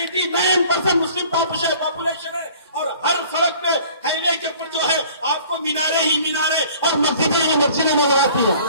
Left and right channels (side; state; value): both; inverted; correlation -0.50